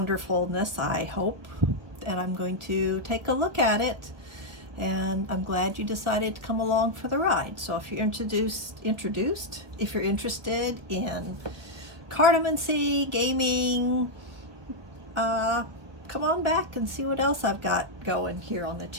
I hope, and I'm going to take a look at it. And I'm glad you decided to come along for the ride. So if you're if you're interested in cartomancy, gaming, come on back and see what else I've got going here on the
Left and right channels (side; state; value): left; late; 1.3 ms